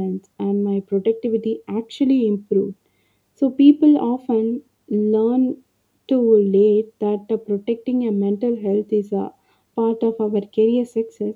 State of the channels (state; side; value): identical; both; correlation 1.00